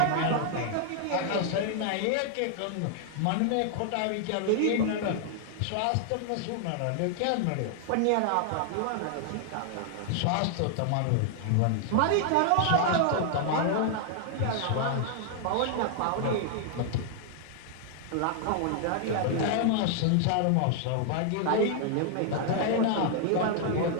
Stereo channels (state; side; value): different; both; correlation 0.00